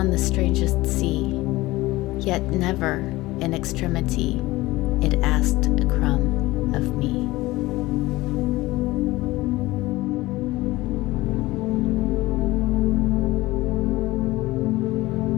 the strangest sea, yet never in extremity it asked a crumb of me.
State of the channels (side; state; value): right; quieter; 19.1 dB